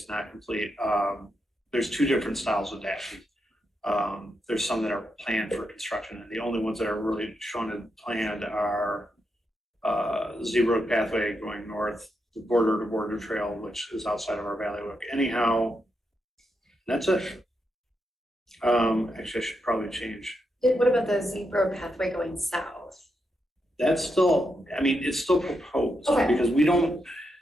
not complete. There's 2 different styles of dashing. There's some that are planned for construction, and the only ones that are really shown and planned are Z-Road pathway going north, the border-to-border trail, which is outside of our Valley. Anyhow, that's it. Actually, I should probably change. What about the Z-Road pathway going south? That's still, it's still proposed. Okay. Because we don't,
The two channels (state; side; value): normal; both; correlation 0.83